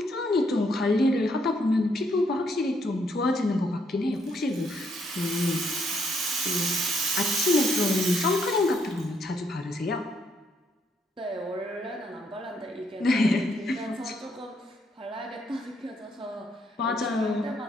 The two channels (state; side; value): normal; both; correlation 0.72